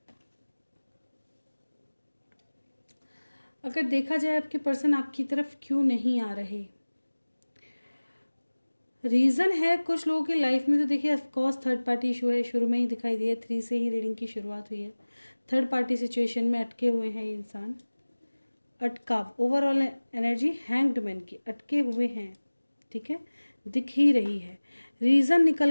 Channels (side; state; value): both; inverted; correlation -1.00